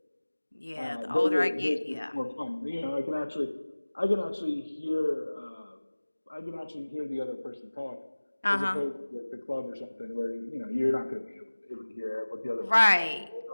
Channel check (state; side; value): inverted; both; correlation -1.00